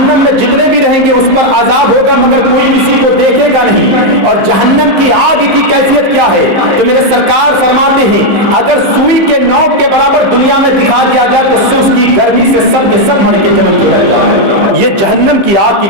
میں جتنے بھی رہیں گے اس پر عذاب ہوگا، مگر کوئی کسی کو دیکھے گا نہیں۔ اور جہنم کی آگ کی کیفیت کیا ہے؟ تو میرے سرکار فرماتے ہیں اگر سوئی کے نوک کے برابر دنیا میں دکھا دیا جائے تو اس کی گرمی سے سب کے سب مر کے جمع ہو جائے۔ یہ جہنم کی آگ کی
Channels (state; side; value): late; left; 15 ms